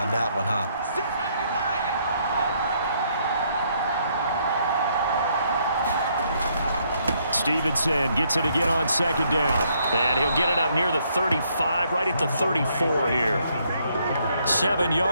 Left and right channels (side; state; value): both; inverted; correlation -0.71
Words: that one, huh? Stevenson gets it again on 2nd down. And he'll get it up near the 35, right at the 34 here. 7